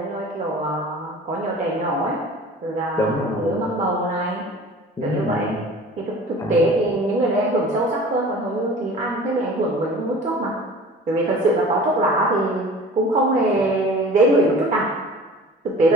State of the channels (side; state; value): both; normal; correlation 0.43